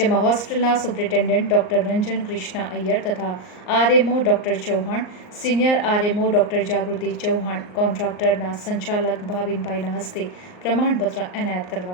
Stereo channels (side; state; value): right; late; 38 ms